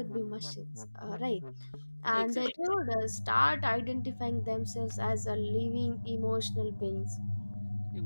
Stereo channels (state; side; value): inverted; both; correlation -1.00